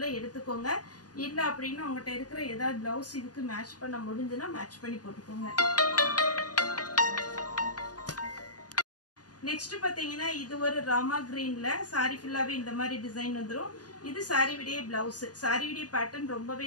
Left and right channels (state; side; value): late; right; 0.68 ms